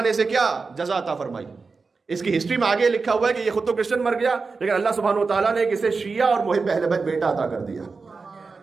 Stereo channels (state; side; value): quieter; left; 4.4 dB